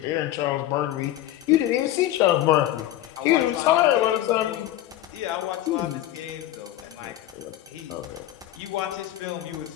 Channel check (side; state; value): right; quieter; 13.6 dB